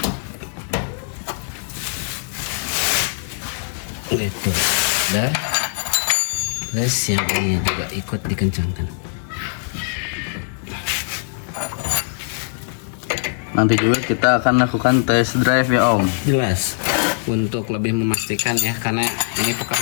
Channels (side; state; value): right; silent; digital silence